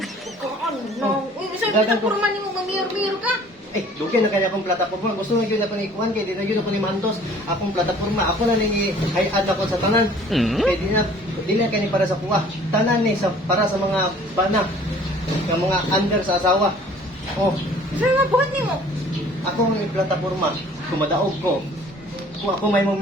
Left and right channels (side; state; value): both; normal; correlation 0.52